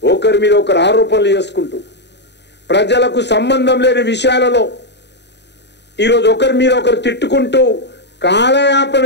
ఒకరి మీద ఒకరు ఆరోపణలు చేసుకుంటూ ప్రజలకు సంబంధం లేని విషయాలలో ఈరోజు ఒకరి మీద ఒకరు తిట్టుకుంటూ కాలయాపన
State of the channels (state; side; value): late; right; 0.50 ms